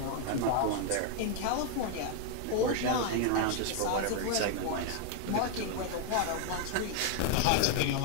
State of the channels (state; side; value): different; both; correlation 0.00